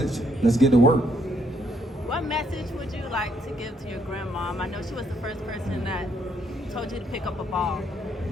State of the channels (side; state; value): both; normal; correlation 0.71